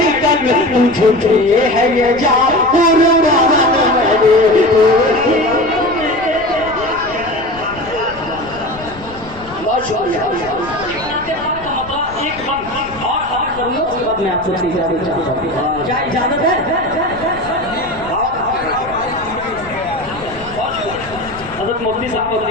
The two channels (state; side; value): noise; left; rumble, 18 dB below the sound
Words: झूठे है ये जा कुर्बान मेरे। एक बंद और खबर करूंगा, उसके बाद मैं आपसे इजाजत चाहता हूँ। क्या इजाजत है? हज़रत मुफ्ती साहब को